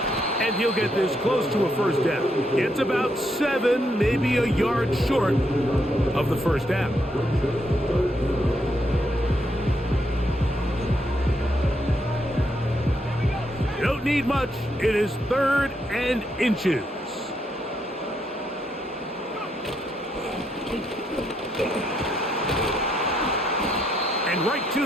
And he'll get this close to a first down. It's about 7, maybe a yard short of the first down. You don't need much. It is 3rd and inches. And right to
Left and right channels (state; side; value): normal; both; correlation 0.77